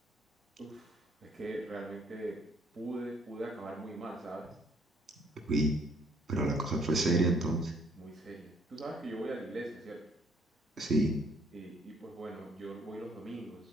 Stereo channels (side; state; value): both; normal; correlation 0.63